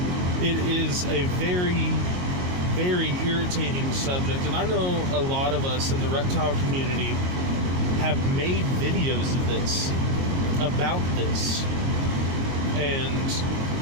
It is a very, very irritating subject, and I know a lot of us in the reptile community have made videos of this, about this, and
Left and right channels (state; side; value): late; left; 22 ms